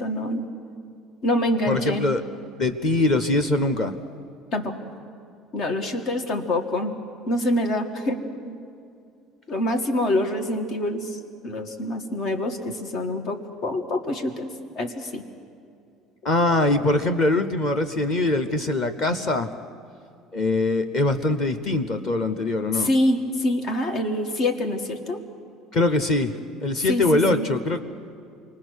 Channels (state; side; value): normal; both; correlation 0.45